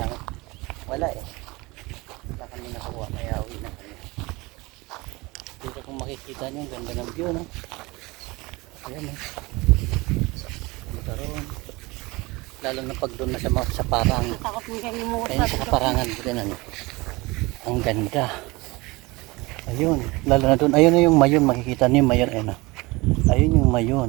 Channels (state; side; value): quieter; left; 23.4 dB